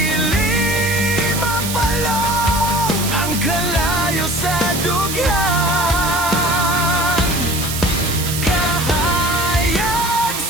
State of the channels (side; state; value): right; noise; hiss, 5 dB below the sound